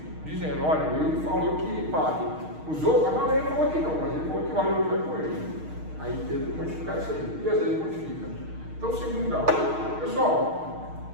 dizendo, olha, ele falou que vale. Os outros, a maioria falou que não, mas ele falou que vale o outro com ele. Aí teve que modificar isso aí, e às vezes modifica. Então, segundo grau. Pessoal,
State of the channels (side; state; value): left; late; 6.4 ms